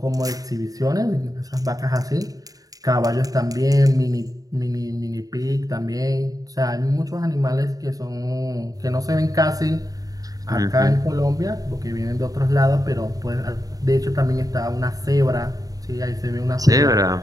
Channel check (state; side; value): late; left; 0.18 ms